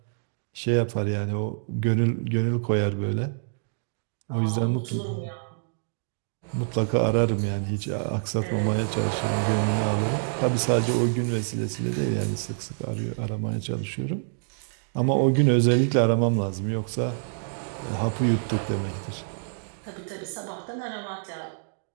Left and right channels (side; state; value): left; silent; digital silence